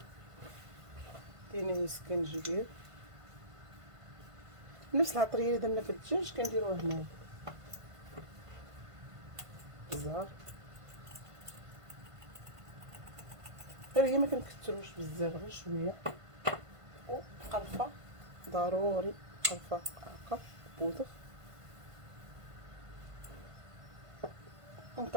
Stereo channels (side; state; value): left; late; 1.5 ms